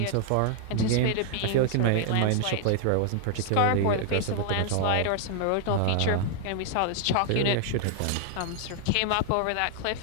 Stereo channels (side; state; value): both; different; correlation 0.00